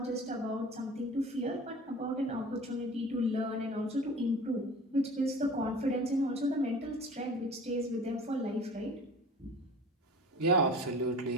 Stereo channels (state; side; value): normal; both; correlation 0.41